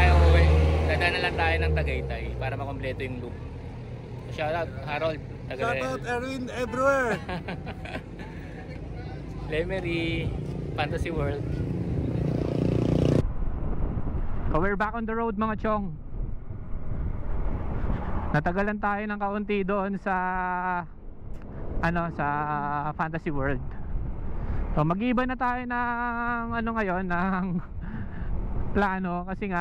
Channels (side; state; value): both; identical; correlation 1.00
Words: uwi. Dadaan na lang tayo ng Tagaytay para makompleto yung loop. Shoutout Harold. Shoutout Erwin everywhere. Lemery, Fantasy World. So we're back on the road mga chong. Natagalan tayo ng kaunti doon sa sa Fantasy World. So mag-iba na tayo ng ngayon ng plano kasi